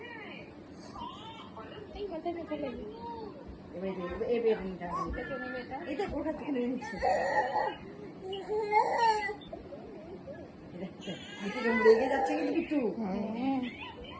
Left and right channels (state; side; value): identical; both; correlation 1.00